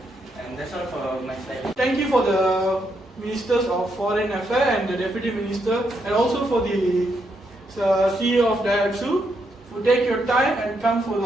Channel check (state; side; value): normal; both; correlation 0.78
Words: And that's all for my slide. Thank you for the Ministers of Foreign Affairs and the Deputy Minister, and also for the CEO of Daihatsu who take your time and come for